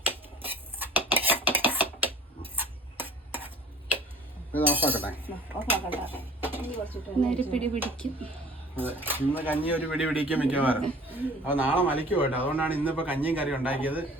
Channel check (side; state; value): both; normal; correlation 0.48